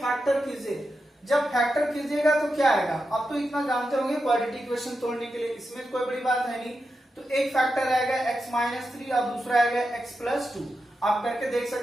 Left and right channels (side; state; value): both; normal; correlation 0.89